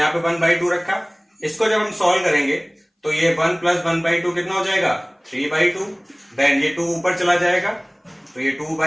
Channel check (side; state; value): both; identical; correlation 1.00